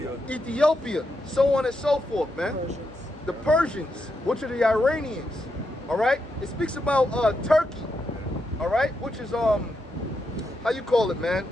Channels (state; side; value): normal; both; correlation 0.83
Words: Ethiopia, so on and so forth, man. The Persians, which are the Iranians, all right? It speaks about Turkey, all right? Which is, how you call it, man?